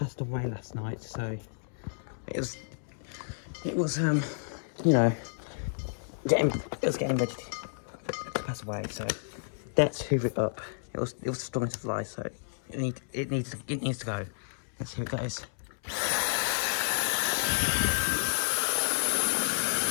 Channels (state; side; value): silent; right; 57 dB below the other